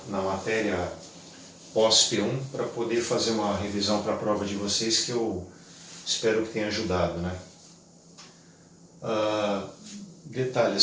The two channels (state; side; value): identical; both; correlation 1.00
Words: na matéria pós-P1 para poder fazer uma revisão para a prova de vocês, que eu espero que tenha ajudado, né? Detalhe,